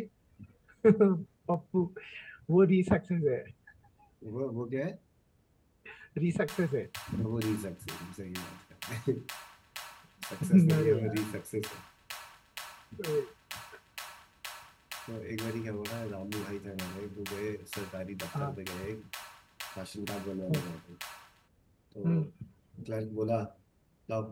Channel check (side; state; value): both; identical; correlation 1.00